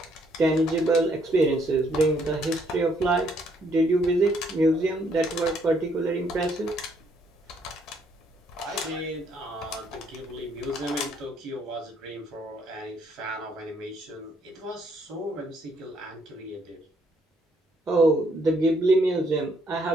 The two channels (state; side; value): normal; both; correlation 0.69